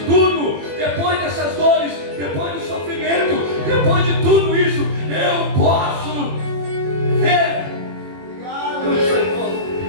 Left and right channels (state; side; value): late; left; 21 ms